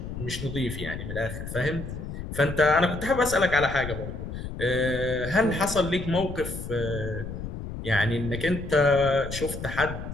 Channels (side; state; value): left; noise; rumble, 8 dB below the sound